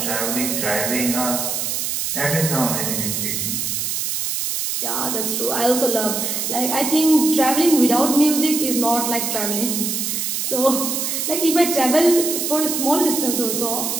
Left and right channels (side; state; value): right; noise; hiss, 1 dB below the sound